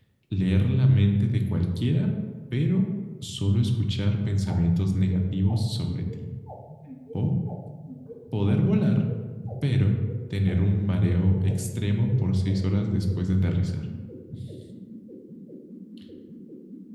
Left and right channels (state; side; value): identical; both; correlation 1.00